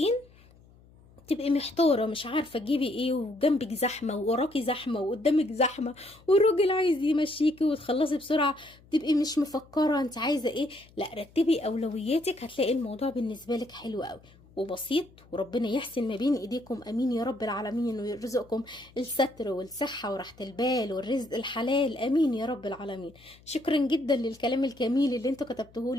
تبقي محتاره مش عارفه تجيبي ايه، وجنبك زحمه ووراكي زحمه وقدامك زحمه، والراجل عايز يمشيكي وتخلصي بسرعه، تبقي مش مفكره انت عايزه ايه. لا، رتبي اولوياتك، هتلاقي الموضوع بالنسبه لك حلو قوي وبسيط، وربنا يحسن ما بين ايديكم. امين يا رب العالمين، ويرزقكم الستر والصحه وراحه البال والرزق الحلال. امين يا رب العالمين. شكرا جدا للكلام الجميل اللي انتوا كتبتوه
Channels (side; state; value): left; noise; hum, 26 dB below the sound